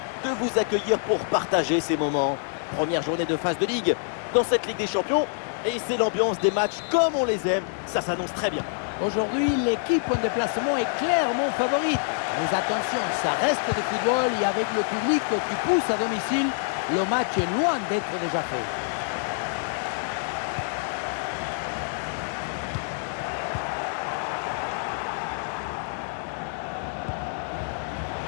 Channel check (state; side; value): silent; right; 61 dB below the other